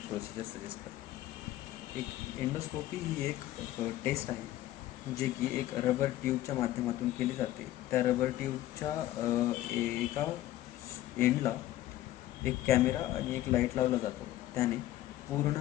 प्रोसिजर सजेस्ट करतात. एंडोस्कोपी ही एक टेस्ट आहे जे की एक रबर ट्यूबच्या माध्यमातून केली जाते. त्या रबर ट्यूबच्या एका एंडला एक कॅमेरा आणि एक लाईट लावला जातो. त्याने पूर्ण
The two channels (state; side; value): quieter; right; 14.6 dB